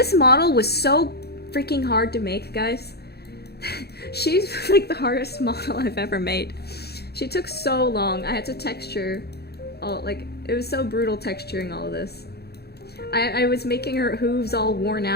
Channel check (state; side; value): late; right; 0.47 ms